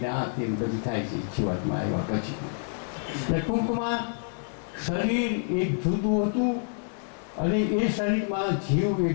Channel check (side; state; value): right; silent; digital silence